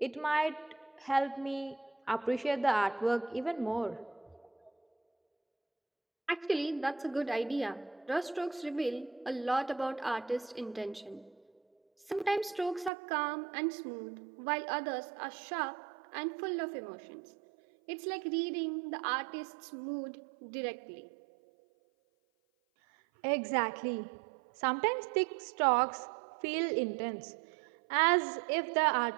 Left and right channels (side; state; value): left; drops out; at 12.9 s